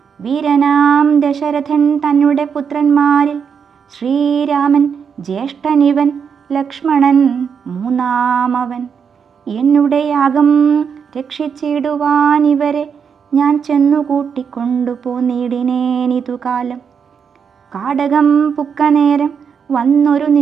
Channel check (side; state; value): left; quieter; 6.8 dB